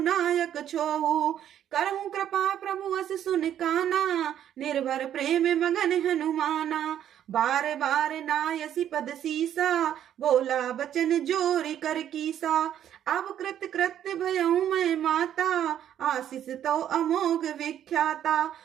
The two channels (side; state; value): left; quieter; 10.4 dB